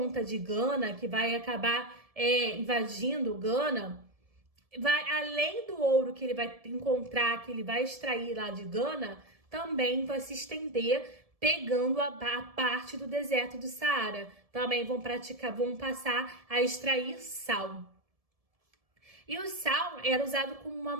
de Gana, que vai acabar invadindo Gana, além do ouro que ele vai encontrar, que ele vai extrair lá de Gana, também vai se estender pegando a parte do deserto do Saara. Também vão passar a extrair sal. E o sal era usado como uma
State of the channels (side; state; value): left; late; 1.7 ms